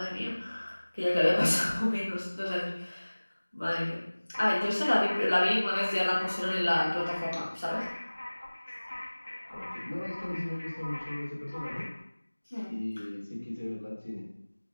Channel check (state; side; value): inverted; both; correlation -1.00